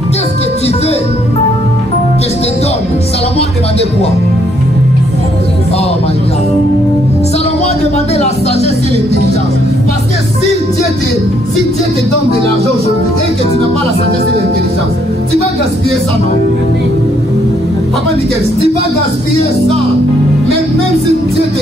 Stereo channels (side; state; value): both; normal; correlation 0.70